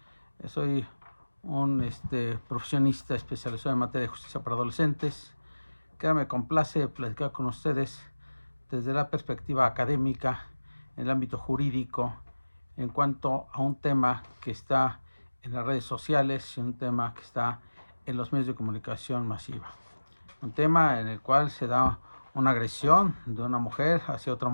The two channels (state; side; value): inverted; both; correlation -1.00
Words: Soy un profesionista especializado en materia de justicia para adolescentes, que me complace platicar con ustedes desde la perspectiva académica, en el ámbito jurídico, en cuanto a un tema que está en las redes sociales y un tema que está en los medios de comunicación masiva. Un tema en el cual se da una agresión de una mujer hacia otra